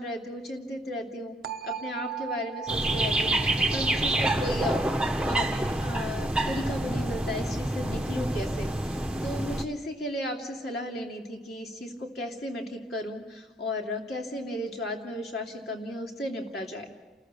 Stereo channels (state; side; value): normal; both; correlation 0.69